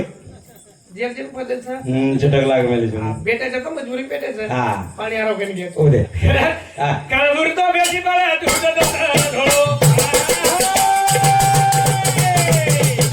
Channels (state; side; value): identical; both; correlation 1.00